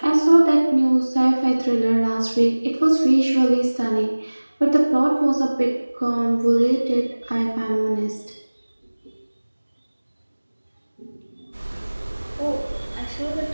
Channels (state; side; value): inverted; both; correlation -1.00